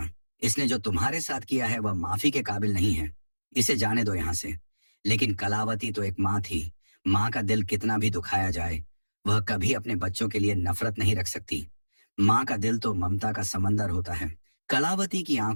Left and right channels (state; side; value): inverted; both; correlation -1.00